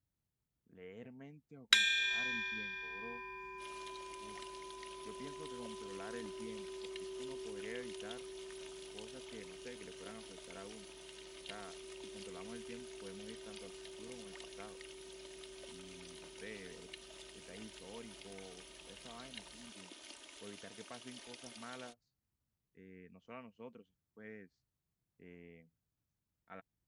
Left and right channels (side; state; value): both; identical; correlation 1.00